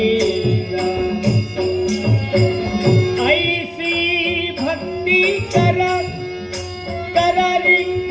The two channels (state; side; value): identical; both; correlation 1.00